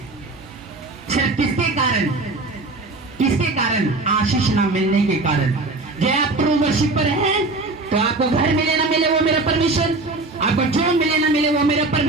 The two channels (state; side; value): quieter; left; 3.3 dB